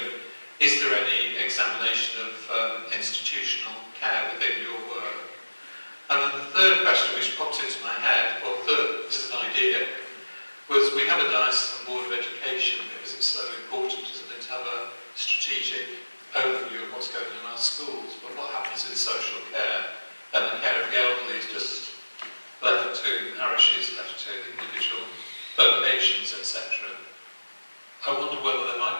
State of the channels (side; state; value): both; inverted; correlation -1.00